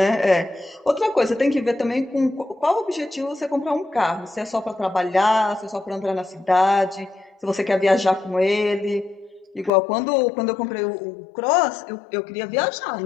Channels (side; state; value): right; drops out; at 9.7 s